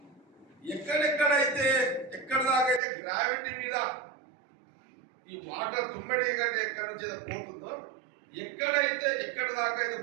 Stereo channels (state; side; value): drops out; left; at 2.8 s